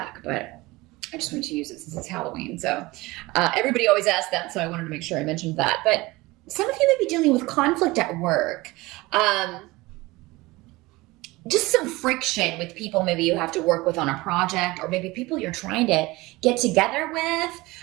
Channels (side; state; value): left; quieter; 21.3 dB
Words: but I just wanted to use it since it's Halloween. So everybody always asks that, so I wanted to make sure I mentioned that. But some of you may be dealing with conflict at work. Just some friction with people maybe you have to work with on a project, or maybe people you're trying to get together with,